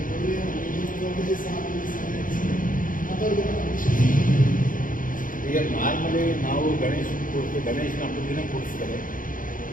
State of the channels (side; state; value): right; late; 0.39 ms